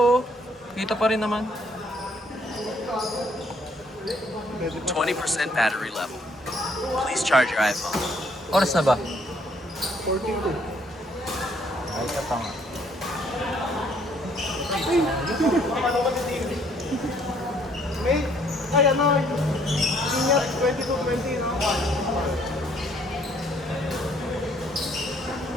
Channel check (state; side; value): normal; both; correlation 0.65